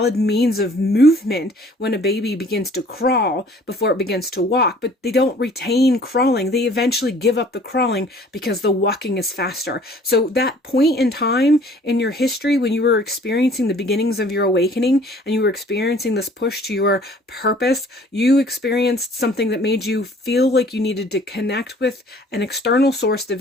means of movement when a baby begins to crawl before it begins to walk, but they don't retain crawling. They eventually give up the crawling because the walking is faster. So that point in time in your history when you were experiencing the beginnings of your awakening and you were experiencing this push to your purpose, you experienced something that made you feel like you needed to connect with an external source to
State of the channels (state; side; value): normal; both; correlation 0.54